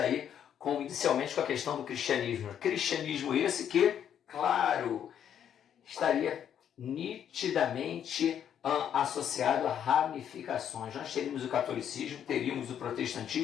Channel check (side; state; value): right; quieter; 9.3 dB